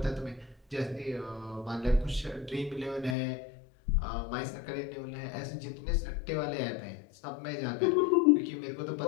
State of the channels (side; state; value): right; drops out; at 3.2 s